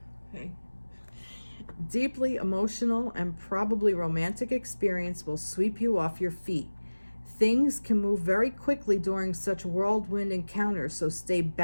and probably romantic experience will sweep you off your feet. Things can move very quickly during such whirlwind encounters, so stay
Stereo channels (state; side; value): inverted; both; correlation -1.00